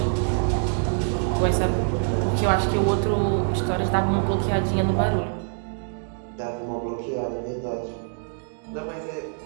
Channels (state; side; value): silent; left; digital silence